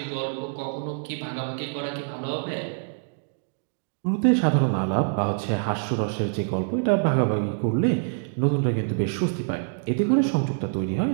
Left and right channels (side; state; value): left; silent; digital silence